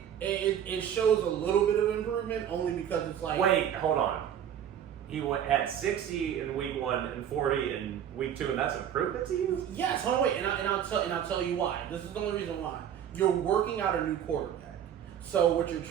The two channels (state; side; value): quieter; left; 9.5 dB